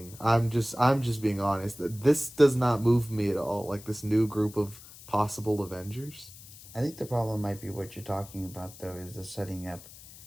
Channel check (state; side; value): noise; left; hiss, 18 dB below the sound